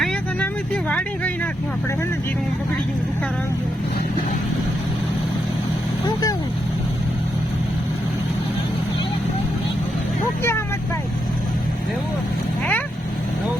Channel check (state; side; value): normal; both; correlation 0.82